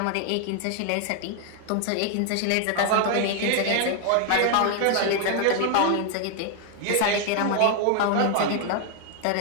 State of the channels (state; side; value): different; both; correlation 0.00